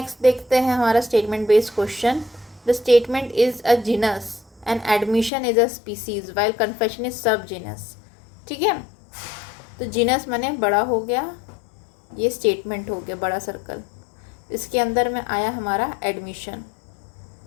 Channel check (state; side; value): drops out; right; at 5.3 s